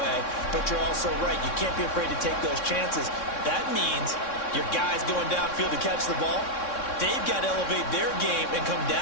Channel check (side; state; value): right; late; 3.6 ms